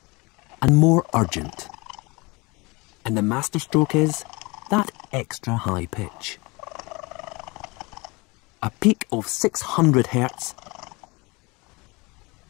and more urgent. And the masterstroke is that extra high pitch. A peak of 600 Hz,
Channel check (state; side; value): quieter; right; 25.8 dB